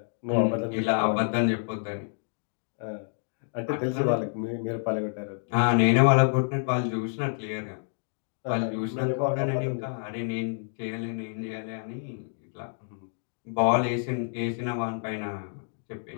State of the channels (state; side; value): silent; right; digital silence